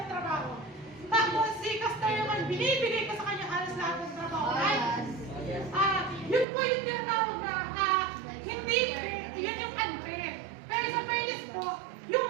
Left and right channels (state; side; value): drops out; left; at 6.5 s